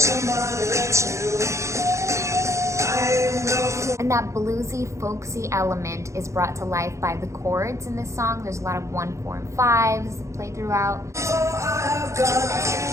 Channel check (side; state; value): left; late; 0.14 ms